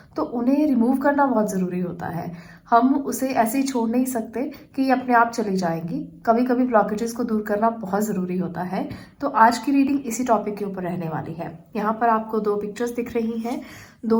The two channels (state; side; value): identical; both; correlation 1.00